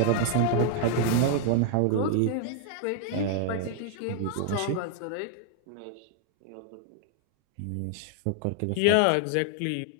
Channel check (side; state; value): both; different; correlation 0.00